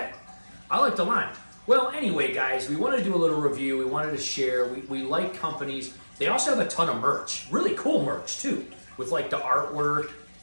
I like the lime. Well, anyway, guys, we wanted to do a little review. We wanted to share. We like companies. They also have a ton of merch, really cool merch too, with like the artwork.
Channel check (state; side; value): inverted; both; correlation -1.00